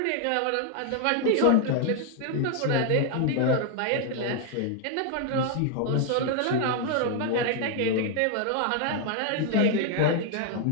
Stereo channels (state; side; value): different; both; correlation 0.00